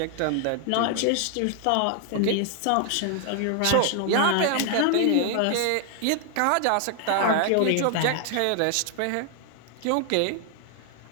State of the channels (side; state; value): both; different; correlation 0.00